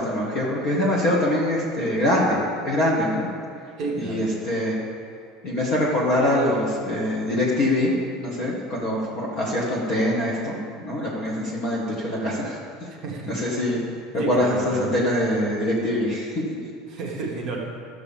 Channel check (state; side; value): normal; both; correlation 0.42